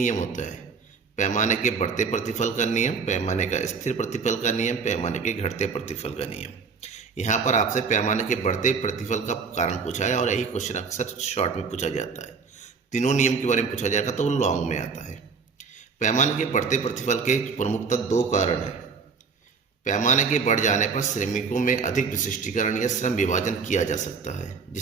होता है। पैमाने के बढ़ते प्रतिफल का नियम, पैमाने का स्थिर प्रतिफल का नियम, पैमाने के घटते प्रतिफल का नियम। यहाँ पर आपसे पैमाने के बढ़ते प्रतिफल का कारण पूछा है और यही क्वेश्चन अक्सर शॉर्ट में पूछा जाता है। तीनों नियम के बारे में पूछा जाएगा तो वो लॉन्ग में आता है। पैमाने के बढ़ते प्रतिफल के प्रमुखतः 2 कारण हैं। पैमाने के बढ़ जाने पर श्रमिकों में अधिक विशिष्टीकरण या श्रम विभाजन किया जा सकता है,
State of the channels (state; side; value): quieter; left; 5.3 dB